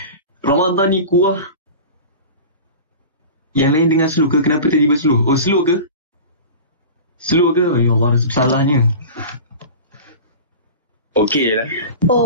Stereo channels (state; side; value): inverted; both; correlation -0.34